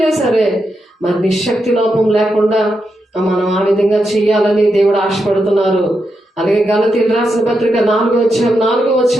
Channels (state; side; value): normal; both; correlation 0.85